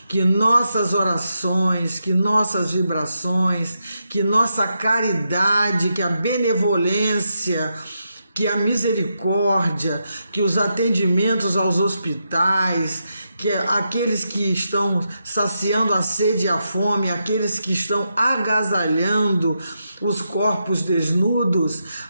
Que nossas orações, que nossas vibrações, que nossa caridade, que a benevolência, que a misericórdia, que os atendimentos aos hospitais, que aqueles que estão saciando a sede e a fome, aqueles que estão agasalhando os corpos desnudos,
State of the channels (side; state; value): both; inverted; correlation -0.84